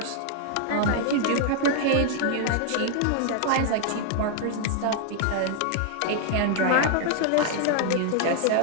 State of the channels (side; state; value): both; different; correlation 0.00